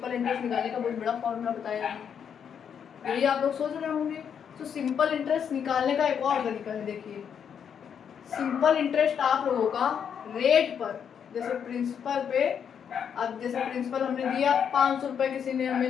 इंटरेस्ट निकालने का बहुत बड़ा फॉर्मूला बताया है, यही आप लोग सोच रहे होंगे। तो सिंपल इंटरेस्ट निकालने का एक और तरीका है, देखिए सिंपल इंटरेस्ट आप लोगों का रेट पर, जैसे प्रिंसिपल पे, अब जैसे प्रिंसिपल हमने दिया 500 रुपये किसी ने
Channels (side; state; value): right; quieter; 7.8 dB